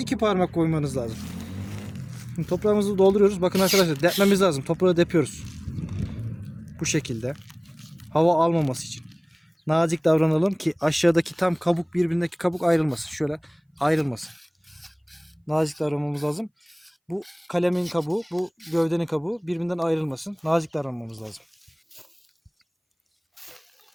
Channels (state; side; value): identical; both; correlation 1.00